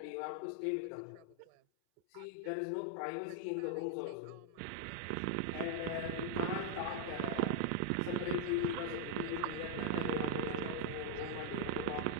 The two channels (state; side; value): different; both; correlation -0.01